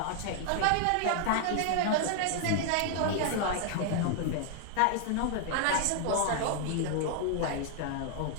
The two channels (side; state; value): both; different; correlation 0.00